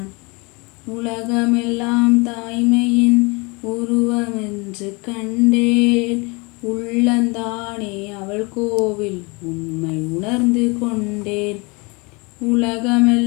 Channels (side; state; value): right; quieter; 28.0 dB